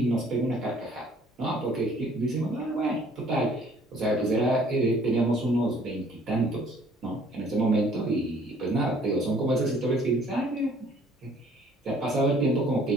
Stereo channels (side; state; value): both; normal; correlation 0.57